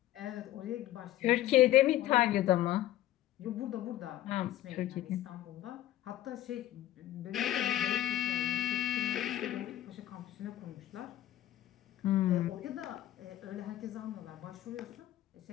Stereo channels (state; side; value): quieter; right; 13.7 dB